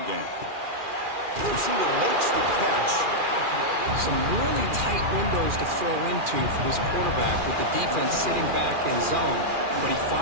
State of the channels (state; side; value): late; left; 2.4 ms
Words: game. The receiver makes the catch. Some really tight windows to throw into for this quarterback with the defense sitting back in zone. But he